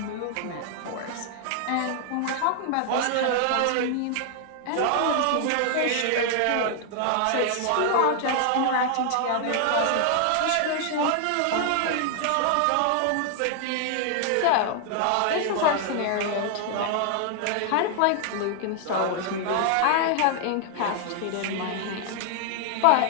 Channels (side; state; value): both; different; correlation 0.00